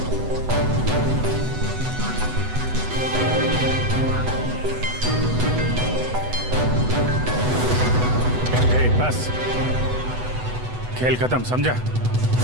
बस, खेल खत्म, समझा?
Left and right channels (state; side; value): late; left; 8.0 ms